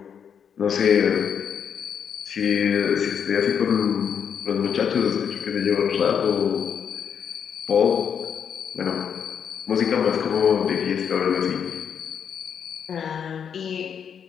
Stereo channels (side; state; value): right; quieter; 7.7 dB